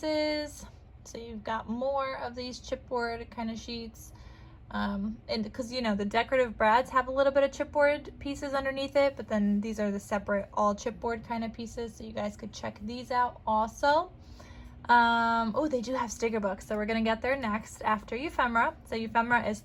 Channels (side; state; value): both; identical; correlation 1.00